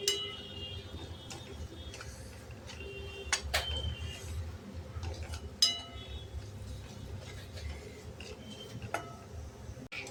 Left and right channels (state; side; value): identical; both; correlation 1.00